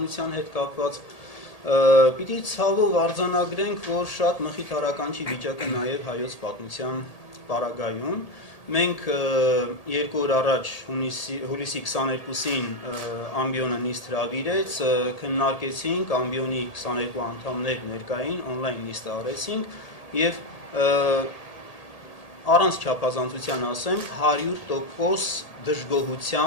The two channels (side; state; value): right; late; 1.8 ms